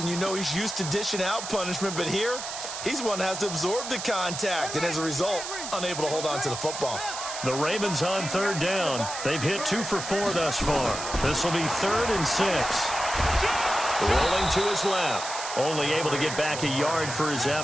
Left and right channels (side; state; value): right; noise; hiss, 7 dB below the sound